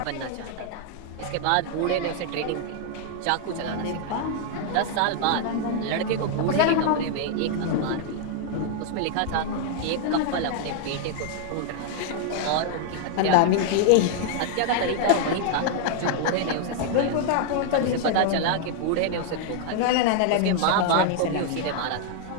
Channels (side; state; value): both; different; correlation 0.00